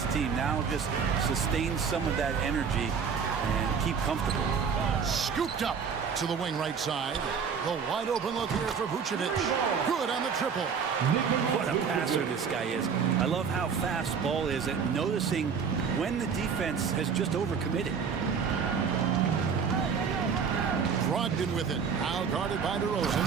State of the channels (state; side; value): quieter; left; 6.3 dB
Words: team. Now just sustain some of that energy and keep comfortable. Scooped up to the wing right side. The wide open look here for Vucevic. Good on the triple. What a passer this guy is. I love how fast Ball is at noticing when the defense has just overcommitted. Brogdon with it. Now guarded by DeRozan.